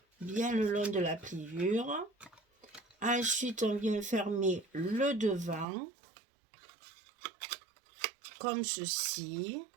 bien le long de la pliure. Ensuite, on vient fermer le devant, comme ceci.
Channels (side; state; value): left; drops out; at 5.7 s